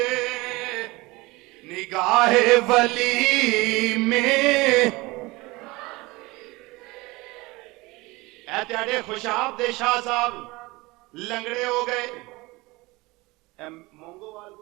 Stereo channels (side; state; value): left; quieter; 22.5 dB